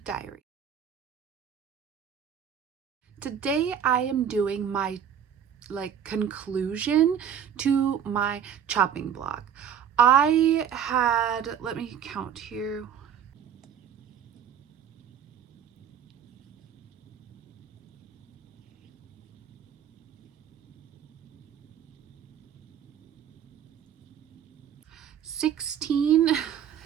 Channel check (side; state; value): left; quieter; 8.6 dB